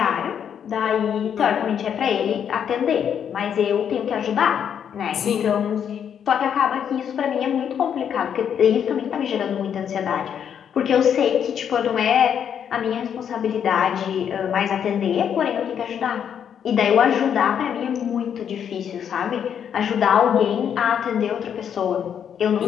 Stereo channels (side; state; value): right; quieter; 8.4 dB